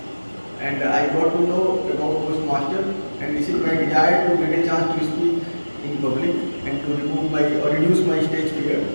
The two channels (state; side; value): inverted; both; correlation -1.00